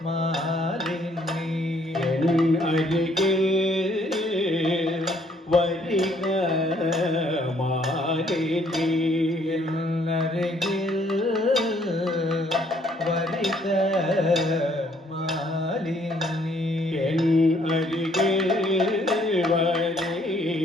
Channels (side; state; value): both; normal; correlation 0.65